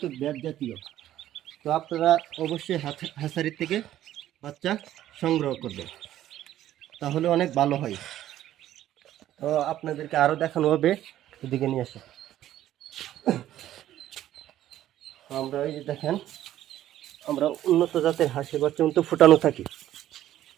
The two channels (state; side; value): quieter; left; 12.7 dB